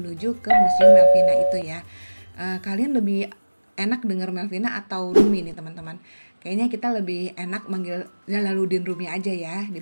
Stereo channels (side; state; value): both; inverted; correlation -1.00